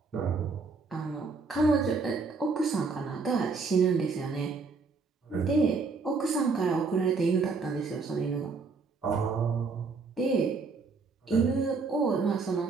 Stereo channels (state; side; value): quieter; left; 4.4 dB